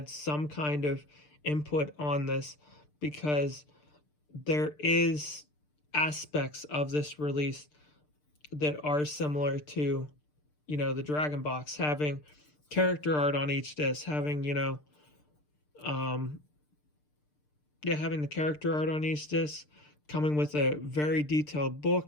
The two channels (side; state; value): right; late; 6.7 ms